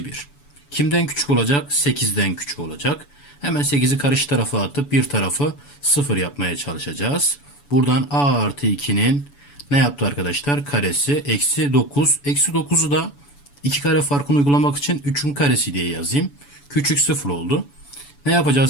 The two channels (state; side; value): late; right; 7.0 ms